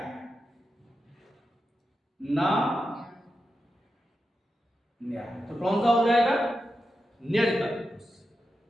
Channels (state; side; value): normal; both; correlation 0.89